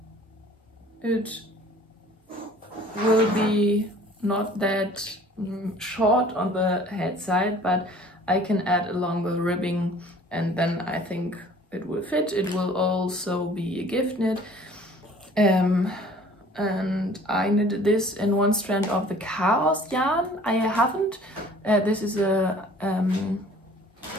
it will be not that short on the head side, but I can add a longer ribbing, and then I think it will fit. It will also be a gift knit. And I knitted this in one strand of the Chaos yarn. I haven't. This is a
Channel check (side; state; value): both; normal; correlation 0.51